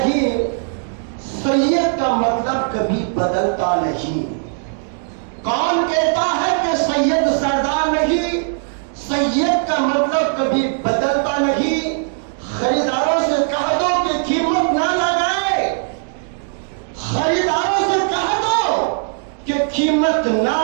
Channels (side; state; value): left; silent; digital silence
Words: سید کا مطلب کبھی بدلتا نہیں۔ کون کہتا ہے کہ سید سردار نہیں، سید کا مطلب کبھی بدلتا نہیں۔ خریداروں سے کہہ دو کہ قیمت نہ لگائے، خریداروں سے کہہ دو کہ قیمت نہ